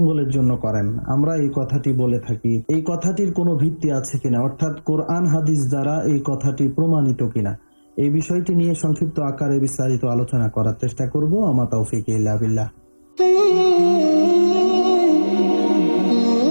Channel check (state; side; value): inverted; both; correlation -1.00